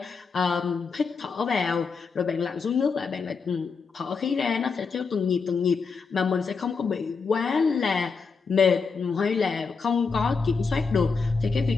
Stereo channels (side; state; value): right; quieter; 5.0 dB